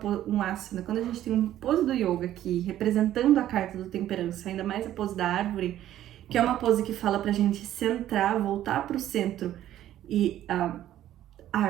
asana, quando a gente tem uma pose do yoga aqui, representando a carta do temperança, ainda mais a pose da árvore, que é uma pose que fala pra gente centrar, voltar pro centro e a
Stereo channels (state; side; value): quieter; left; 12.5 dB